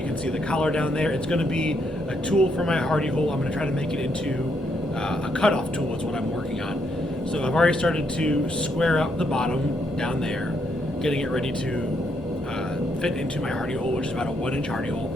can see the collar down there. It's going to be a tool for my hardy hole. I'm going to try to make it into a cutoff tool is what I'm working on. So I've already started to square up the bottom down there, getting it ready to fit into my hardy hole, which is about a 1-inch hardy hole.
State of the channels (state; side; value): normal; both; correlation 0.75